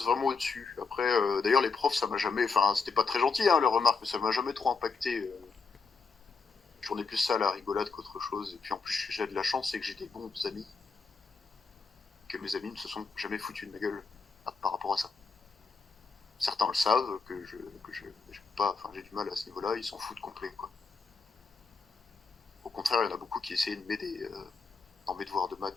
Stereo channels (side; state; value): right; quieter; 4.8 dB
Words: vraiment au-dessus. Après, d'ailleurs, les profs, ça m'a jamais. Enfin, c'était pas très gentil, hein, leurs remarques, mais ça m'a jamais trop impacté. J'en ai plus ça à la rigolade qu'autre chose. Et puis en plus, j'ai de la chance, c'est que j'ai des bons amis. Que mes amis ne se sont jamais foutus de ma gueule par rapport à ça. Certains le savent, j'ai pas. Enfin, j'ai du mal à ce niveau-là, ils s'en foutent complet, quoi. Au contraire, il y en a beaucoup qui essayaient de m'aider dans mes devoirs de